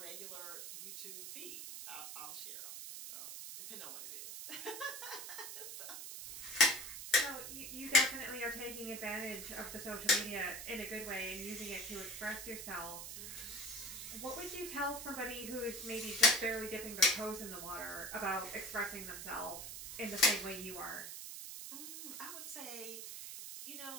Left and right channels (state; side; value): noise; right; hiss, 8 dB below the sound